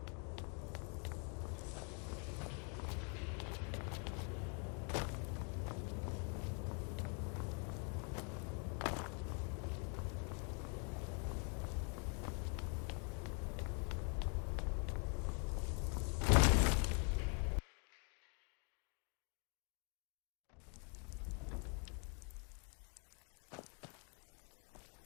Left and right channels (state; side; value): quieter; right; 38.1 dB